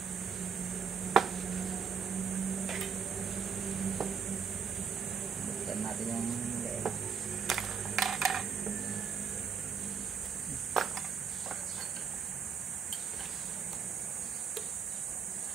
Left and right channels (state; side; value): quieter; left; 6.5 dB